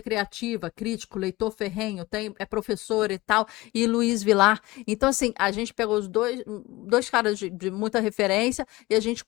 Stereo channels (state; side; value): quieter; right; 20.1 dB